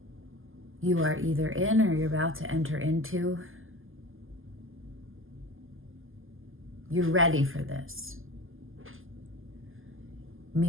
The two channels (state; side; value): late; left; 0.59 ms